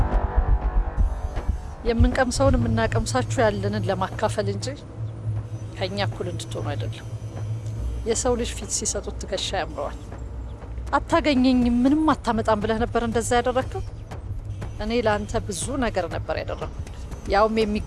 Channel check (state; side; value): identical; both; correlation 1.00